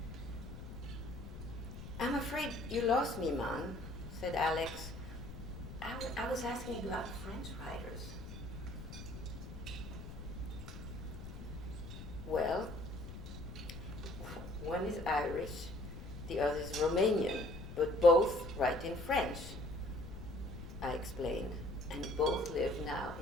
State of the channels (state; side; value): noise; left; rumble, 10 dB below the sound